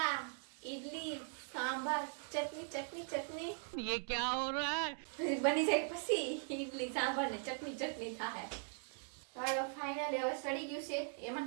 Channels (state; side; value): silent; left; 51 dB below the other